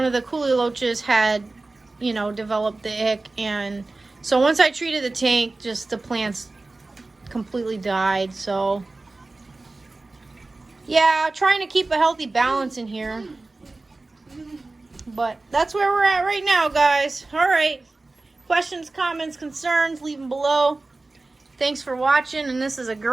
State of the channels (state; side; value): quieter; left; 3.3 dB